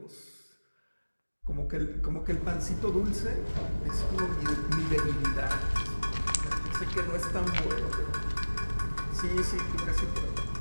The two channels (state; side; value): inverted; both; correlation -1.00